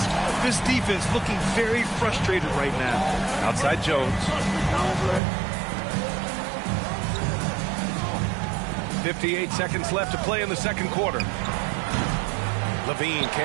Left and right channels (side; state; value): left; drops out; at 5.2 s